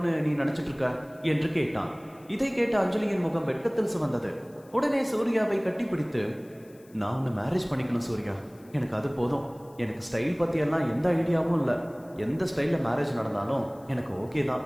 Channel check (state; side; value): noise; left; hiss, 29 dB below the sound